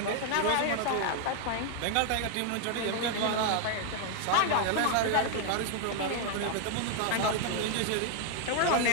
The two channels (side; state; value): both; different; correlation 0.00